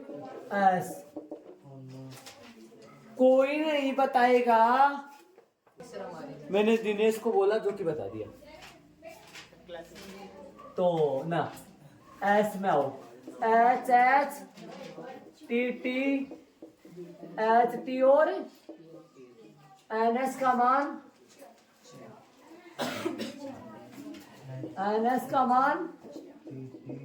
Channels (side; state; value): both; identical; correlation 1.00